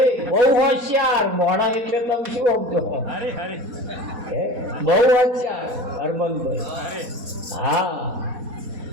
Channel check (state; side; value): late; left; 4.1 ms